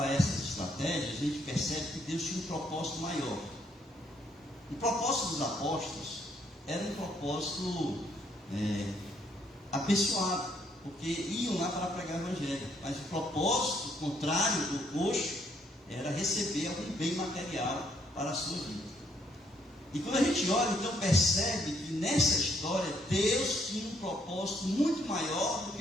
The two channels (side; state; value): both; normal; correlation 0.70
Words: essas estratégias, a gente percebe que Deus tinha um propósito maior. O propósito dos apóstolos era um propósito abençoado, porque iam lá para pregar o evangelho. Mas o propósito contrário do coxo era receber algum bem material para a sua vida. E quando a gente olha, então percebe que nessa história Deus tinha um propósito muito maior do